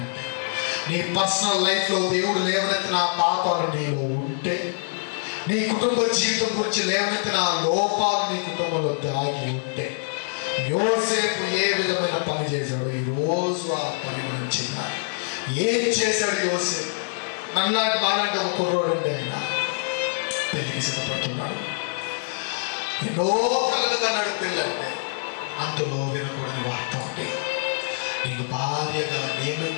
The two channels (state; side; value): silent; right; digital silence